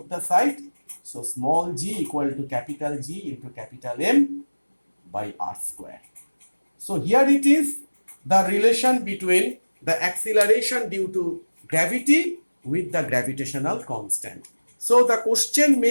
the sides, So small g equal to capital G into capital M by r square. So here it is the relation between the acceleration due to gravity with the gravitational constant. So the question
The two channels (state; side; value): inverted; both; correlation -1.00